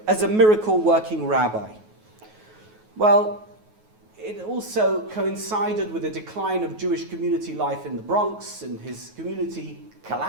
as a miracle-working rabbi. Well, it also coincided with the decline of Jewish community life in the Bronx, and his community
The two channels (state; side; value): late; left; 9.4 ms